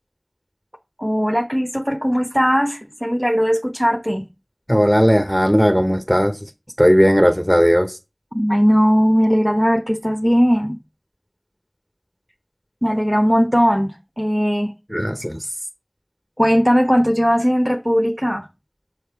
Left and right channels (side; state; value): both; identical; correlation 1.00